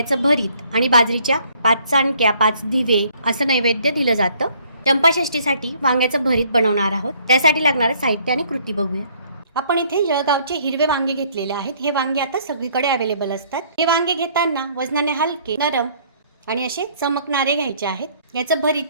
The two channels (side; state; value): both; inverted; correlation -0.62